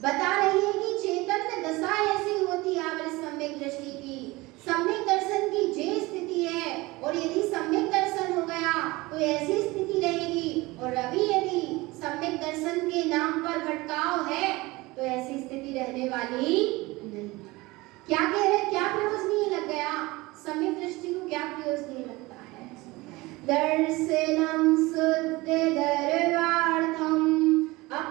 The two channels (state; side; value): quieter; left; 21.6 dB